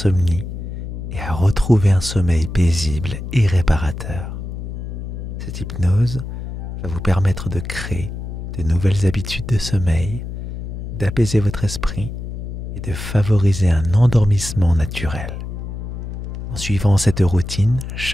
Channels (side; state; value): left; noise; hum, 7 dB below the sound